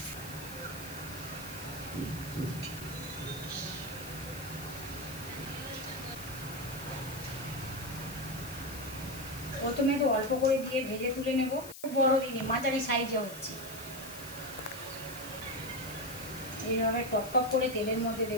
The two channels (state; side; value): noise; left; hiss, 13 dB below the sound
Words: প্রথমে তো অল্প করে দিয়ে ভেজে তুলে নেব, খুব বড় দিনে মাঝারি সাইজে হচ্ছে। এইভাবে টপ টপ করে তেলের মধ্যে